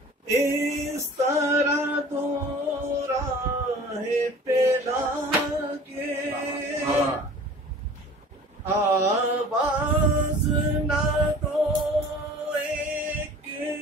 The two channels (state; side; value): normal; both; correlation 0.44